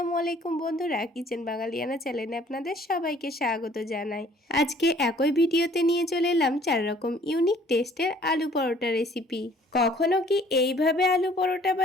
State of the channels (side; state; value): both; normal; correlation 0.56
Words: আলাইকুম বন্ধুরা, কিচেন বাঙালিয়ানা চ্যানেলে আপনাদের সবাইকে স্বাগত জানাই। আজকে একই ভিডিওতে নিয়ে চলে এলাম 4 রকম ইউনিক টেস্টের আলু পরোটা রেসিপি। কখনো কি এইভাবে আলু পরোটা